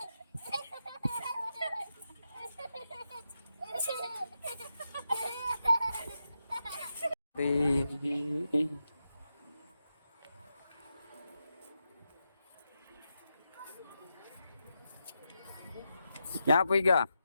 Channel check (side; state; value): both; inverted; correlation -0.87